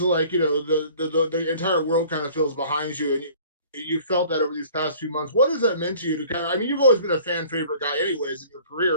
of like the entire world kind of feels behind you, and you felt that over these past few months. What has that meant to you to kind of? I mean, you've always been a fan favorite guy, anyways, in your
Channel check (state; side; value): inverted; both; correlation -0.50